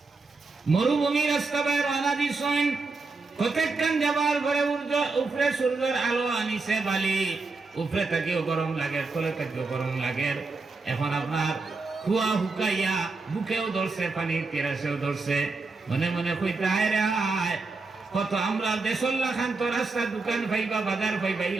মরুভূমি রাস্তা বাইর আনা দিছেন, প্রত্যেকখান যাবার ঘরে উপরে সূর্যের আলো আনিছে বালি, উপরে থাকিও গরম লাগে, তলে থাকিও গরম লাগে। এখন আপনার কুয়া হুকাইয়া বুকেও ধরছে, পানি তেরাসেও ধরছে, মনে মনে কইতে হায় রে হায়, কত আমরা দেশল্লা খান তো রাস্তা দোকান পাইবা বাজার পাইবা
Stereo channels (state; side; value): quieter; left; 3.8 dB